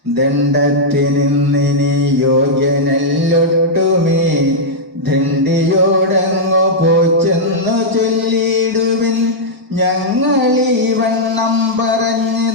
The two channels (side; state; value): both; normal; correlation -0.08